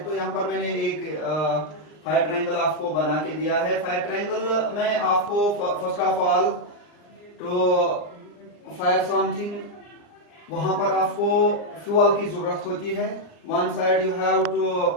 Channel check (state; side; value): late; right; 39 ms